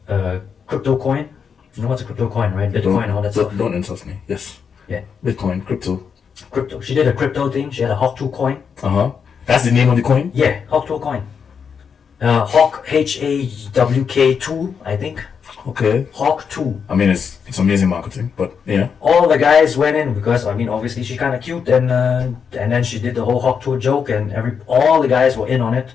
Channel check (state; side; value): quieter; right; 6.6 dB